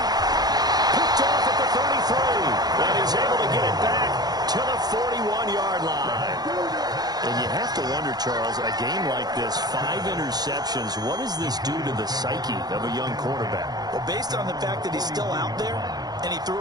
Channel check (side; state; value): left; late; 0.19 ms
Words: Picked off at the 33, and he's able to get it back to the 41-yard line. And you have to wonder, Charles, a game like this, 5 interceptions, what does this do to the psyche of a young quarterback? Well, based on the fact that he's still out there and he threw